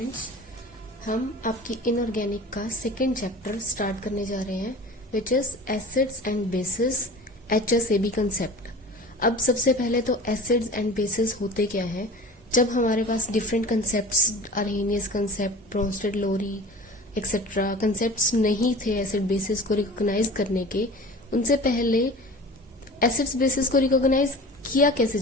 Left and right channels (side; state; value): both; normal; correlation 0.39